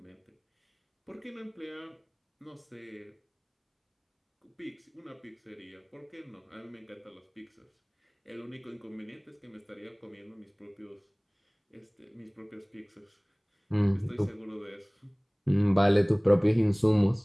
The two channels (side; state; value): both; identical; correlation 1.00